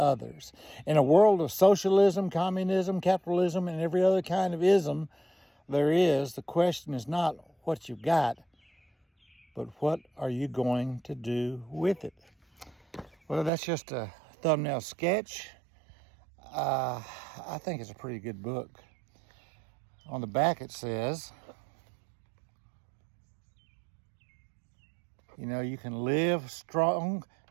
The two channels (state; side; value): drops out; left; at 13.5 s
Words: In a world of socialism, communism, capitalism, and every other kind of ism the question is not what you've got, but what are you going to do with it? Well, that's just a thumbnail sketch. I think it's a pretty good book. On the back it says, you can live strong